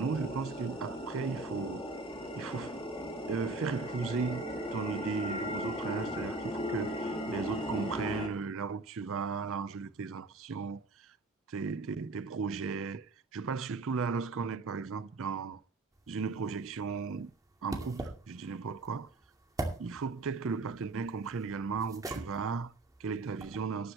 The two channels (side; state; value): left; quieter; 3.4 dB